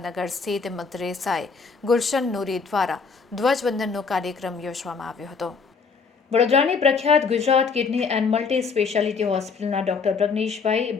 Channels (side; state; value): right; quieter; 5.2 dB